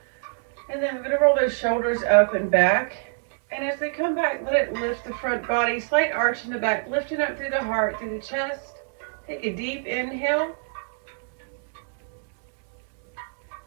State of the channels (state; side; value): silent; left; digital silence